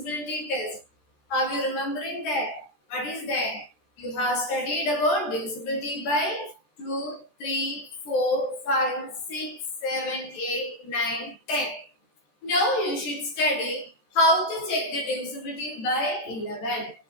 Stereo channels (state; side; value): late; right; 14 ms